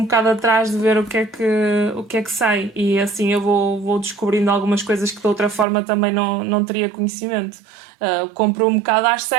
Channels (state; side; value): drops out; left; at 5.7 s